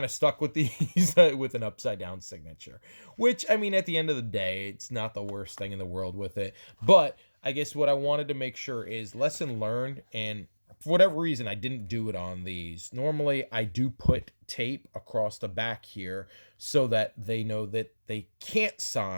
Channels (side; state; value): both; inverted; correlation -1.00